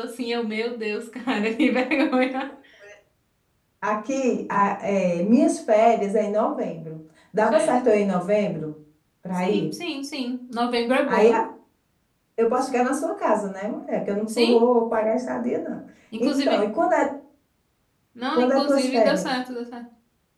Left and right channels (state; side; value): identical; both; correlation 1.00